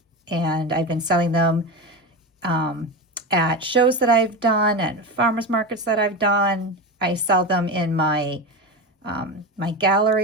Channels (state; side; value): normal; both; correlation 0.20